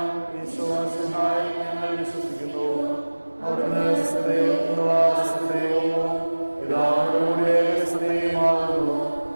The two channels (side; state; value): both; inverted; correlation -1.00